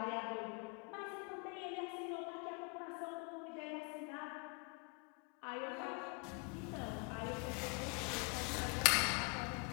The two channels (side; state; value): right; quieter; 33.7 dB